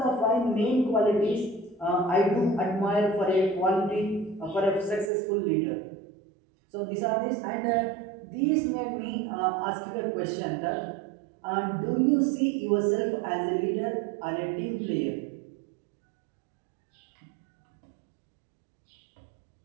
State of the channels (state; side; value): drops out; left; at 5.1 s